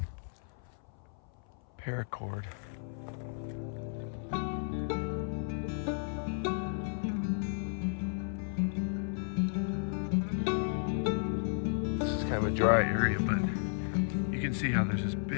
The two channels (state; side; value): silent; right; 55 dB below the other